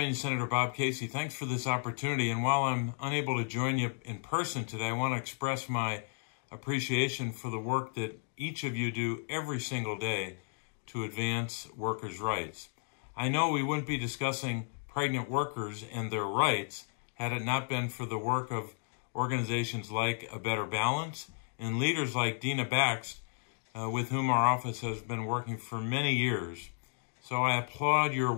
Senator Bob Casey. Thanks for this opportunity. And while I'm unable to join you in person today, I want to express my appreciation for the work that each of you do every single day to advance workers' rights. I know we wouldn't be discussing pregnant workers and their rights had it not been for the work of organizations like A Better Balance and leaders like Dina Bax, with whom our office has been working for many years. So I applaud your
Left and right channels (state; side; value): silent; right; 56 dB below the other